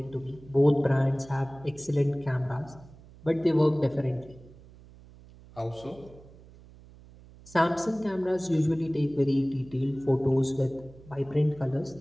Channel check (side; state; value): right; noise; hum, 22 dB below the sound